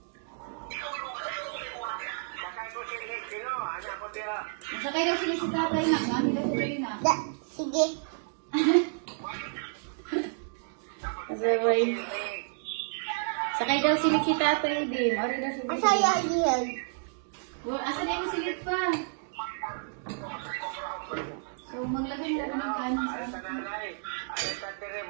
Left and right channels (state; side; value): silent; left; digital silence